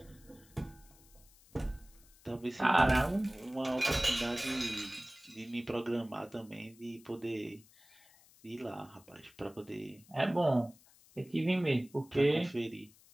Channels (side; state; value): left; noise; hiss, 26 dB below the sound